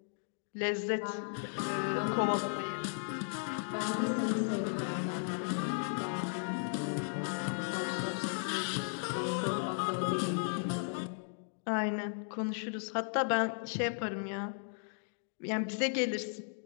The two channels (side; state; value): right; silent; digital silence